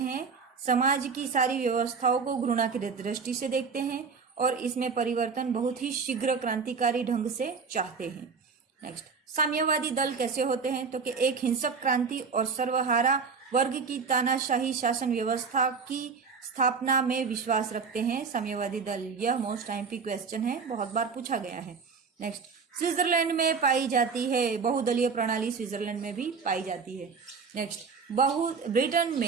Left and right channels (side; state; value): left; quieter; 5.4 dB